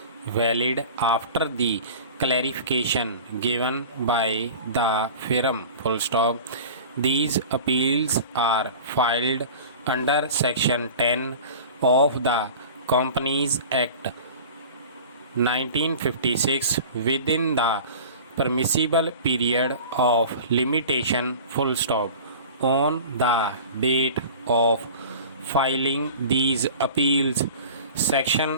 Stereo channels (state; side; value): inverted; both; correlation -0.38